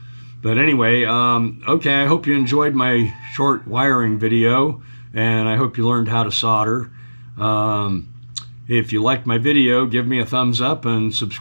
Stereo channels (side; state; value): both; inverted; correlation -1.00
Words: But anyway, okay, I hope you enjoyed my short wiring video, and I hope you learned how to solder. If you liked my video, give me a thumbs up and